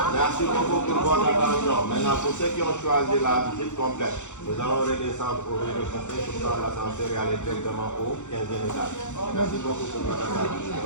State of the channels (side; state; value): right; late; 0.84 ms